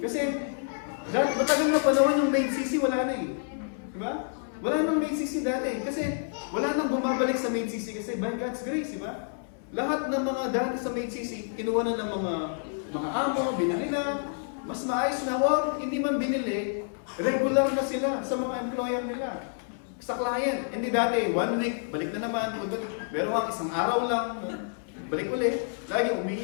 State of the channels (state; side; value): silent; right; 59 dB below the other